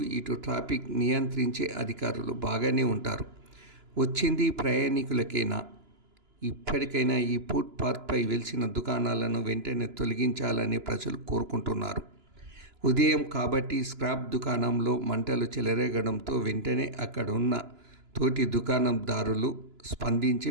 ఇటు ట్రాఫిక్ నియంత్రించే అధికారులు బాగానే ఉంటారు. వచ్చింది ప్రయాణికులకేనా? ఇప్పటికైనా ఈ ఫుట్ పాత్పై వెలిసిన దుకాణాలను వెంటనే తొలగించాలని ప్రజలు కోరుకుంటున్నారు. ఉదయం కాబట్టి స్క్రాప్ దుకాణంలో మంటలు చెలరేగడంతో వెంటనే అక్కడున్న తోటి దుకాణందారులు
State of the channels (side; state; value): left; late; 2.9 ms